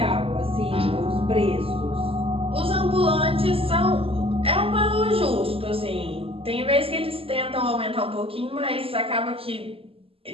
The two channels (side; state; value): left; late; 0.27 ms